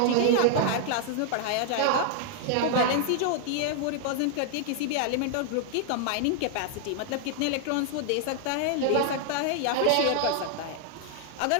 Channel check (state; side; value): different; both; correlation 0.00